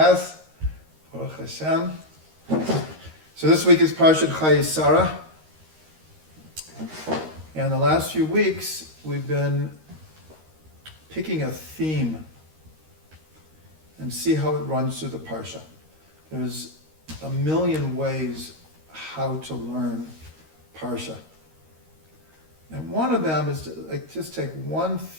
Baruch Hashem. So this week is Parsha Chayei Sarah. And the last few weeks we've been picking a theme and see how it runs through the Parsha. There's a million ways how to learn Parsha. And one of them is to just take one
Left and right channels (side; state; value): left; late; 13 ms